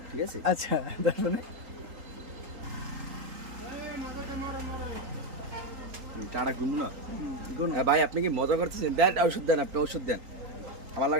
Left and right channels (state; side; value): late; left; 3.8 ms